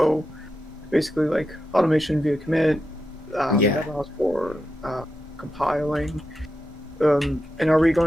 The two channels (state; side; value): normal; both; correlation 0.88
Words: basically like automation via commit, Yeah. that allows for compiling. And are we